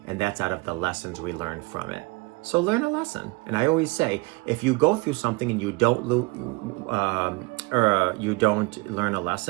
and that's out of the lessons we learn from it. So learn a lesson. And I always say, if you go through something and you don't you don't learn a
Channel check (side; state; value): left; quieter; 25.4 dB